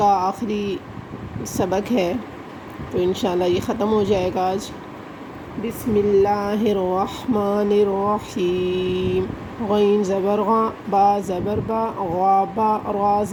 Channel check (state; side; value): identical; both; correlation 1.00